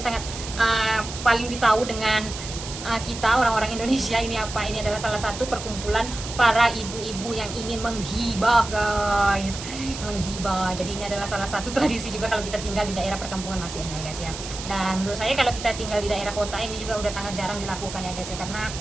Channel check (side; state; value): right; noise; hiss, 10 dB below the sound